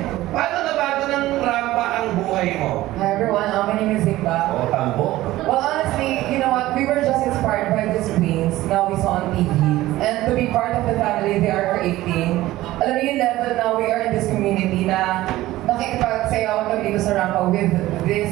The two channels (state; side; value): quieter; left; 16.4 dB